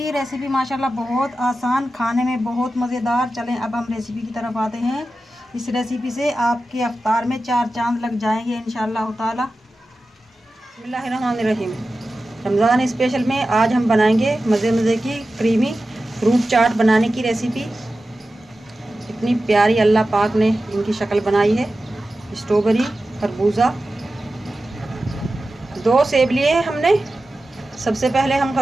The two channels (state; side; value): normal; both; correlation 0.94